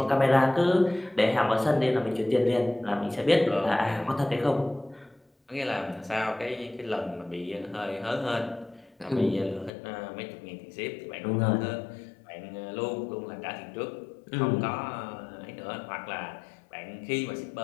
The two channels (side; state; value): right; drops out; at 9.7 s